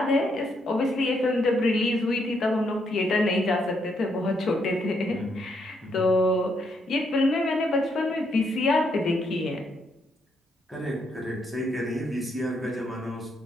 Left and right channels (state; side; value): normal; both; correlation 0.75